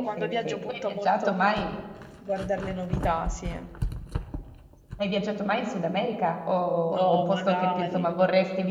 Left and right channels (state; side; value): identical; both; correlation 1.00